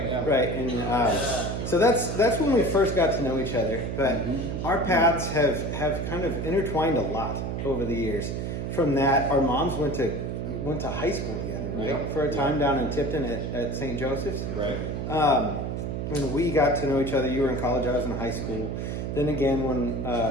Yeah. Right. And so that's when we first got to know each other. But our paths have kind of intertwined a lot over the years. From that, our moms went to high school together, right? Yeah. For a time down in Tipton at St. Joseph's. Right. When we got to know each other, you were in college, I was in high school. Then again, when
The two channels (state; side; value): noise; right; hum, 3 dB below the sound